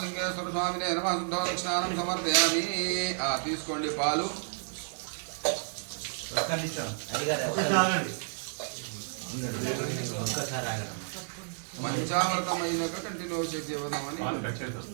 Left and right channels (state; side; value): silent; left; digital silence